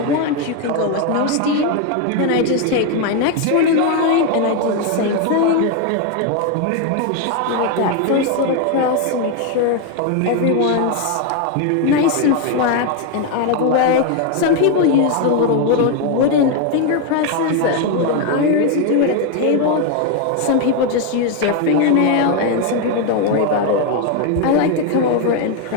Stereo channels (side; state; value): both; different; correlation 0.01